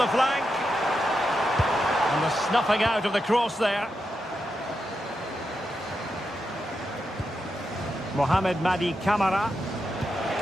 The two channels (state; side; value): normal; both; correlation 0.86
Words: flank. And the snuffing out of the cross there. Mohamed Madi Camara.